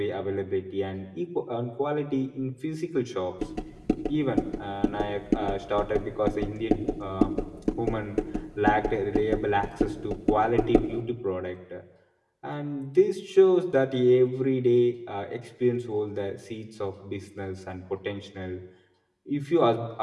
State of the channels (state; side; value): identical; both; correlation 1.00